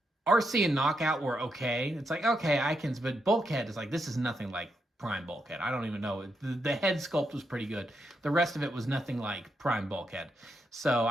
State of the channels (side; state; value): both; normal; correlation 0.81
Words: and Knockout were okay. It's like, okay, but Bulkhead is like, this is nothing like Prime Bulkhead. I don't even know. The head sculpt was pretty good. The rest of it was nothing like Prime Bulkhead. So